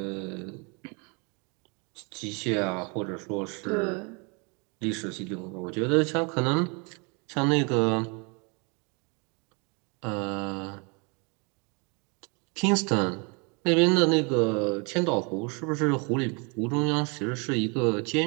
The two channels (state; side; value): quieter; left; 32.5 dB